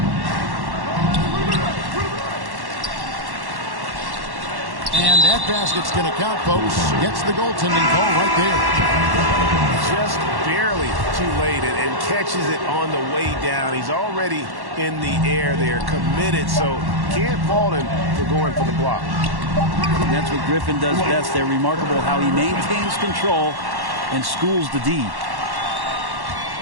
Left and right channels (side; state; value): left; late; 1.1 ms